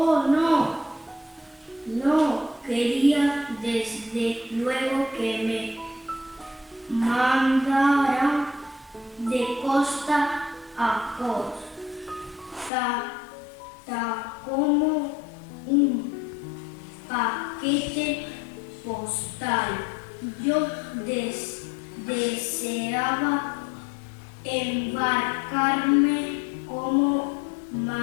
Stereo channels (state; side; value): drops out; right; at 12.7 s